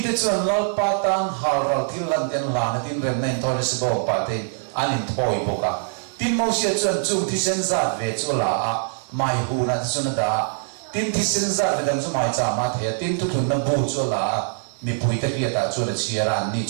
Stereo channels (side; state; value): left; silent; digital silence